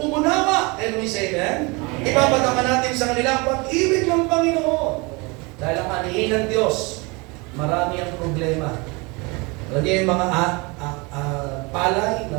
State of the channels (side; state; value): left; quieter; 27.4 dB